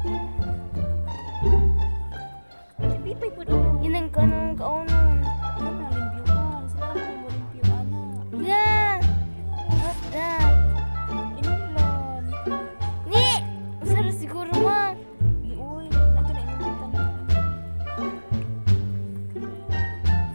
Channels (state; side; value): inverted; both; correlation -1.00